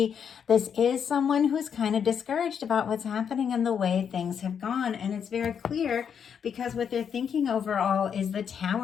This is someone who's kind of discouraged about what's happening and the way things have gone. And it's very clear because what they're thinking overall is the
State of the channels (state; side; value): quieter; right; 7.6 dB